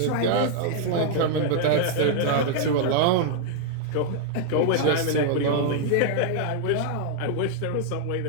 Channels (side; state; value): both; different; correlation -0.01